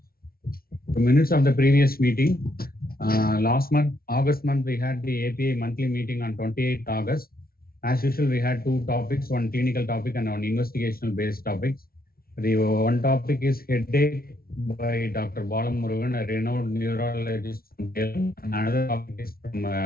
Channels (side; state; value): right; late; 0.44 ms